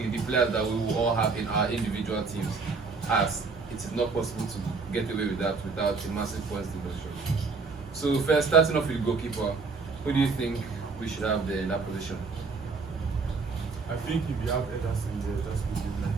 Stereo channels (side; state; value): left; quieter; 4.4 dB